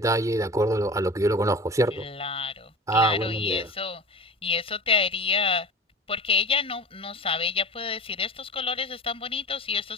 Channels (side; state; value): both; normal; correlation 0.36